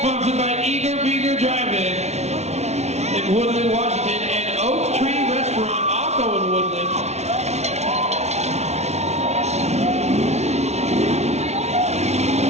Sponsored by Eager Beager Drive-In in Woodland, Washington, and Oak Tree Restaurant, also in Woodland.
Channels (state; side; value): late; left; 0.32 ms